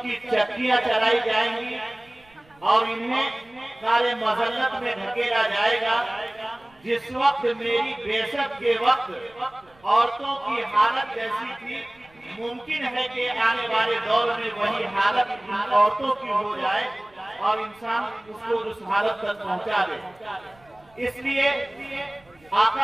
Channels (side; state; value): right; noise; rumble, 30 dB below the sound